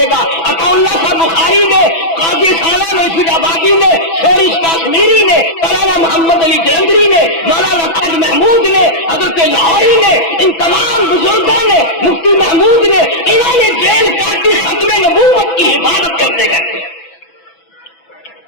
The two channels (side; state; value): right; late; 6.1 ms